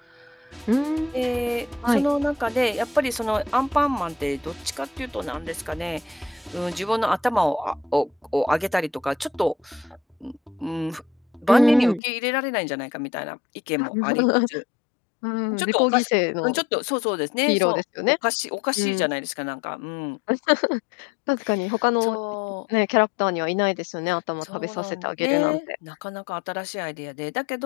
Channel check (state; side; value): drops out; right; at 12.0 s